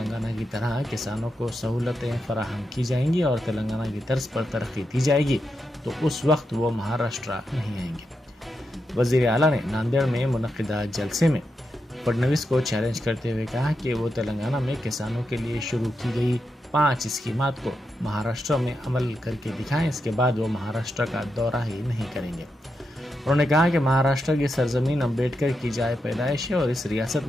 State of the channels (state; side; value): normal; both; correlation 0.86